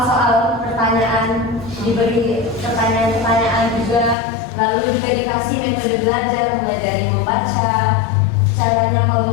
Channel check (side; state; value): right; drops out; at 4.2 s